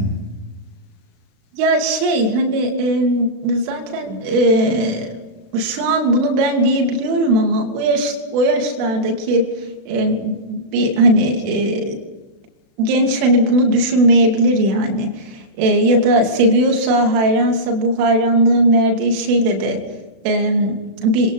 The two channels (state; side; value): late; left; 36 ms